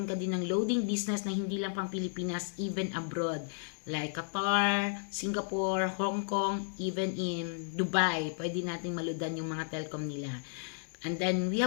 ka din ng loading business na hindi lang pang Pilipinas, even abroad. Like Qatar, Singapore, Hong Kong, even in Dubai. Pwede natin maludan yung mga telcom nila. And then, we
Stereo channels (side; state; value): right; silent; digital silence